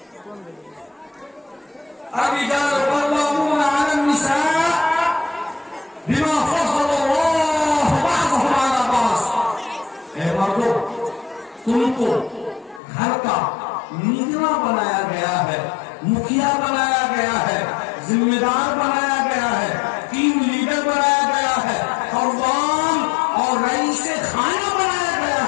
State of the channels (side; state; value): right; drops out; at 12.8 s